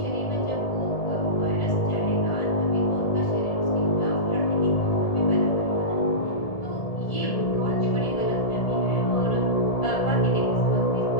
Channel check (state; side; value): late; right; 1.7 ms